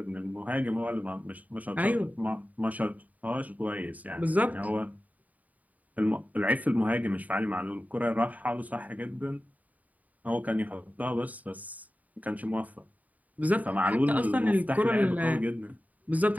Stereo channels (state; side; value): late; left; 0.074 ms